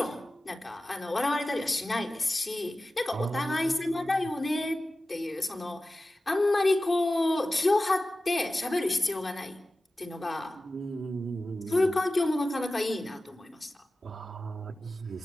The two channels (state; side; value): normal; both; correlation 0.95